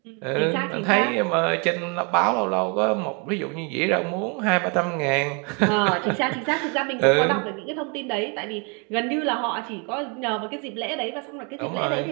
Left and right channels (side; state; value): left; quieter; 34.2 dB